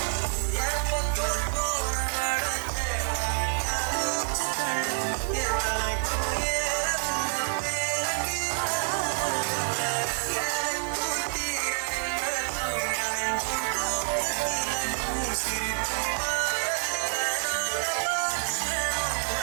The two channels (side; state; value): left; silent; digital silence